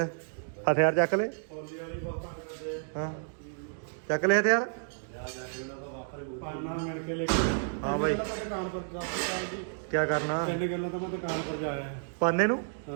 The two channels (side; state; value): left; silent; digital silence